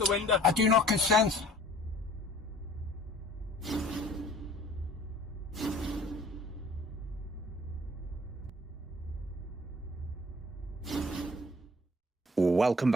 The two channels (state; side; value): normal; both; correlation 0.52